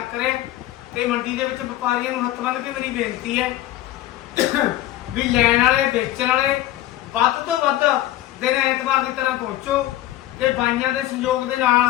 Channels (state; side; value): quieter; right; 14.4 dB